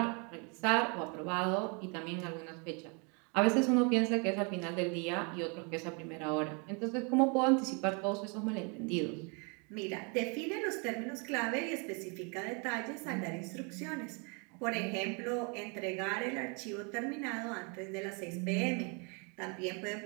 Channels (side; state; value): left; quieter; 34.1 dB